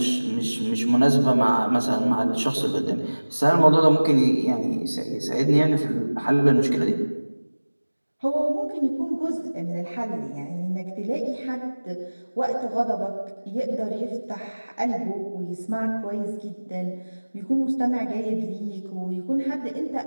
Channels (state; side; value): inverted; both; correlation -1.00